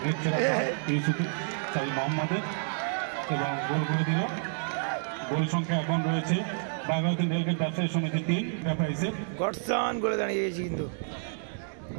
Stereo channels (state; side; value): silent; left; digital silence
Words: মোহাম্মদের এবং গোল করে দিল। গোল সংখ্যা এখন রয়েছে বাগাতিন রেলগেট ব্যবসায়ী সমিতি 3, এন্টারপ্রাইজের গডসন করে দাঁড়িয়ে গেছি কিন্তু।